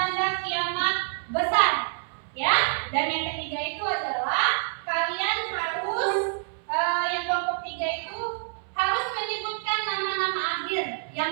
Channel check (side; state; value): left; silent; 60 dB below the other